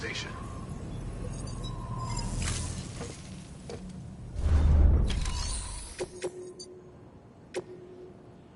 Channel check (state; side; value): identical; both; correlation 1.00